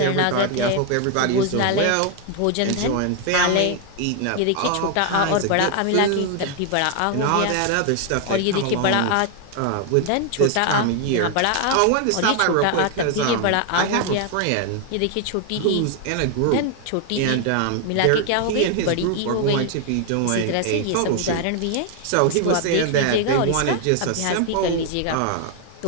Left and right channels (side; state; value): both; different; correlation 0.00